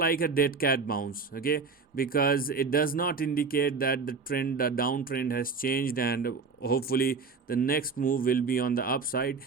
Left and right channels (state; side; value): quieter; left; 4.8 dB